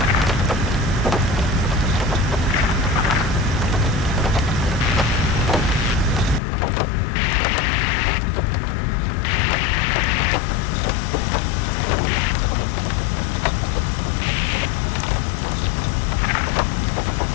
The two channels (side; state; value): right; drops out; at 6.4 s